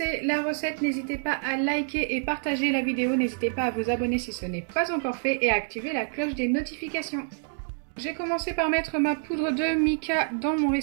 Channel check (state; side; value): silent; left; 57 dB below the other